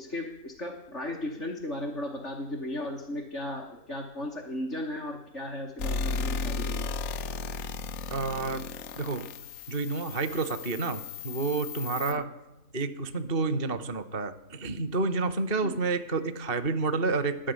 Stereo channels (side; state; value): right; late; 3.8 ms